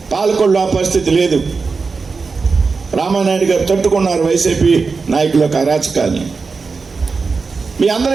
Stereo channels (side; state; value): left; quieter; 4.6 dB